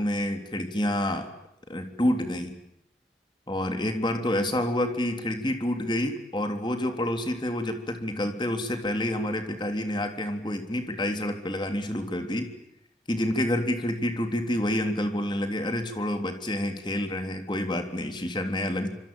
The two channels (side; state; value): both; normal; correlation 0.69